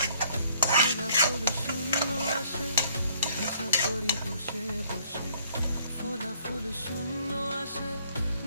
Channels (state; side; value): inverted; both; correlation -0.62